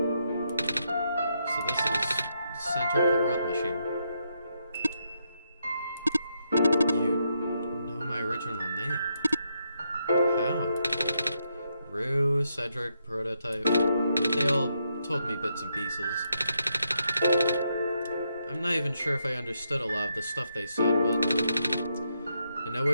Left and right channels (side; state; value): both; inverted; correlation -0.80